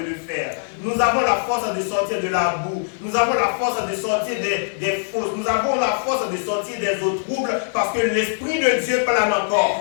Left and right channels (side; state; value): right; silent; 55 dB below the other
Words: le faire. Nous avons la force de sortir de la boue. Nous avons la force de sortir des fausses. Nous avons la force de sortir des eaux troubles parce que l'Esprit de Dieu plane